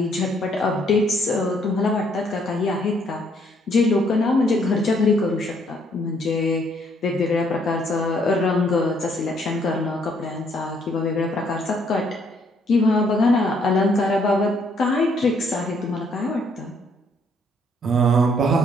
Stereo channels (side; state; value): both; normal; correlation 0.68